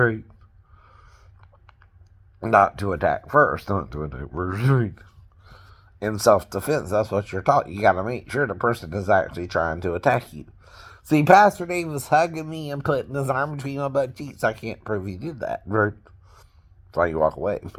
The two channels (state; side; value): identical; both; correlation 1.00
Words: Not to attack first, right? In self-defense, that's what you're taught. You gotta make sure the person is actually trying to attack you. See, Pastor Dave was hugging me and putting his arm between my butt cheeks. I can't prove he did that, right? That's why you walk away.